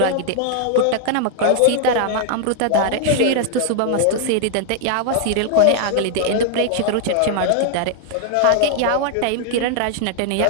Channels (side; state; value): both; different; correlation 0.00